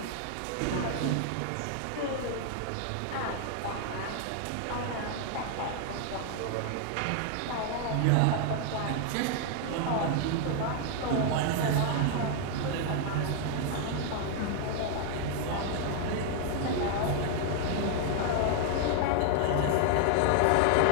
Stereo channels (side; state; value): both; different; correlation 0.00